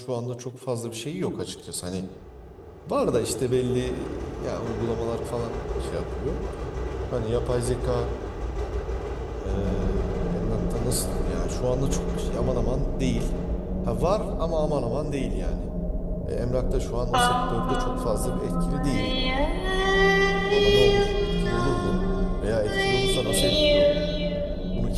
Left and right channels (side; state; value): both; identical; correlation 1.00